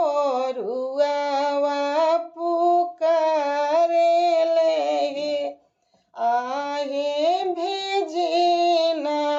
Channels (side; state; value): both; identical; correlation 1.00